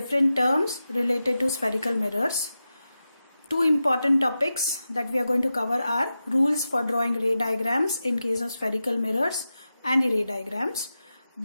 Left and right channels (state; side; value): inverted; both; correlation -0.92